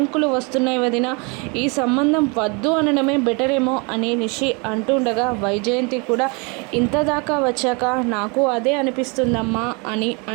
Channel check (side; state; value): left; quieter; 31.1 dB